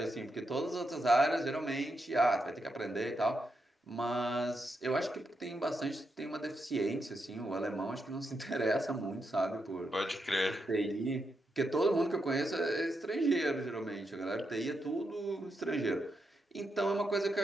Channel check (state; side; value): normal; both; correlation 0.84